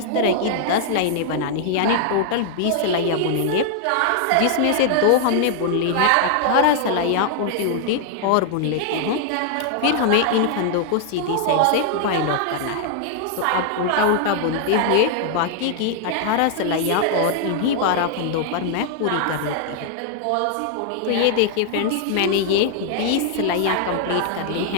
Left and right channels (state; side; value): different; both; correlation 0.00